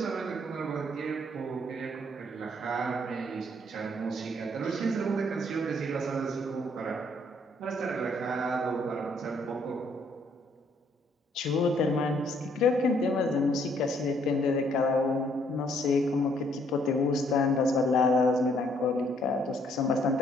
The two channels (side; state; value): both; normal; correlation 0.67